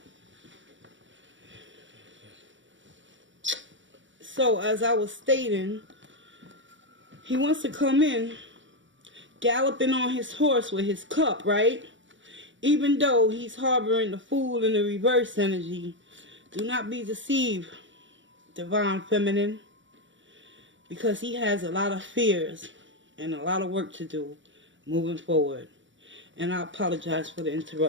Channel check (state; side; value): late; left; 0.55 ms